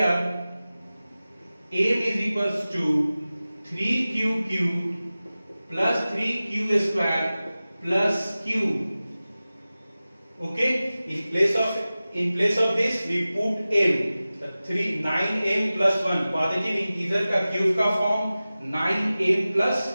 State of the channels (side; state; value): both; inverted; correlation -0.96